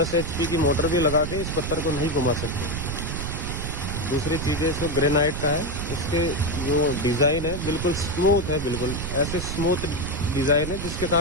HP की मोटर भी लगा के इस पत्थर को नहीं घुमा सकते। दूसरी चीज़ें इसको ग्रेनाइट का है, इसके जो डिज़ाइन है बिल्कुल स्मूथ है, बिल्कुल ऐसे स्मूथ डिज़ाइन है जिसके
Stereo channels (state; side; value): noise; right; rumble, 4 dB below the sound